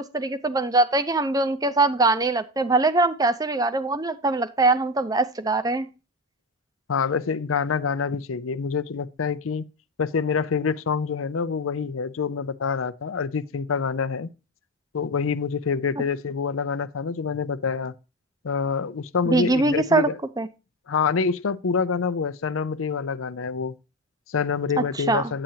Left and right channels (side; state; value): both; normal; correlation 0.17